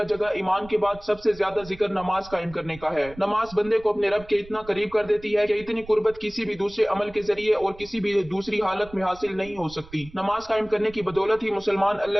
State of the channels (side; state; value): right; noise; rumble, 20 dB below the sound